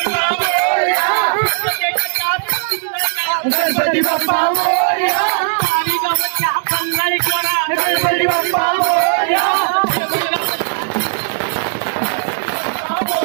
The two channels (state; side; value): silent; left; digital silence